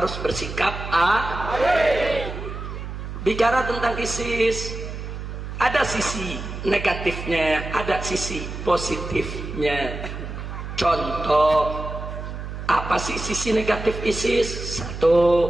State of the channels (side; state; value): right; noise; hum, 8 dB below the sound